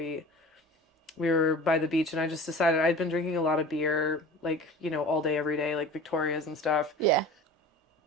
were by the beach, and I just decided I'd been drinking a lot of beer, like, you know, all day, every day, like Victoria's and stuff. Yeah.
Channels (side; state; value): both; normal; correlation 0.39